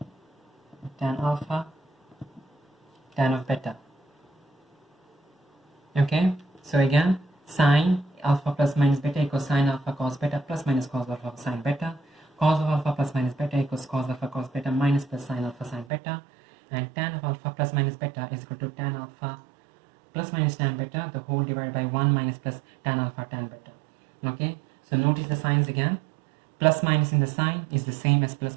tan alpha tan of beta. Okay, so again, sine alpha plus minus beta equals sine alpha cos beta plus minus cos alpha sine beta. Cos of alpha plus minus beta equals cos alpha cos beta minus plus sine alpha sine beta. And tan of alpha plus minus beta is equal to tan alpha plus minus tan beta, the whole divided by 1 minus plus tan alpha tan beta. Okay, so notice the signs again. Plus minus in the sign is the same as plus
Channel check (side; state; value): left; drops out; at 15.9 s